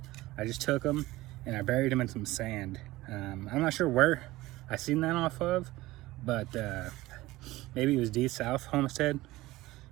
I just took them and I buried them in some sand. I'm not sure where I seen that off of, but maybe it was D South Homestead.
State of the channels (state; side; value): quieter; left; 18.4 dB